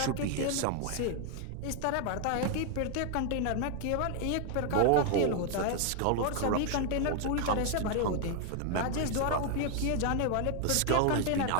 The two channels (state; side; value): different; both; correlation 0.00